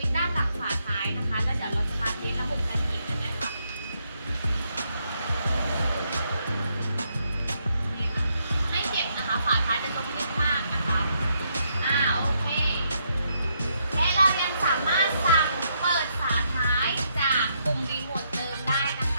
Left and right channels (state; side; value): inverted; both; correlation -0.76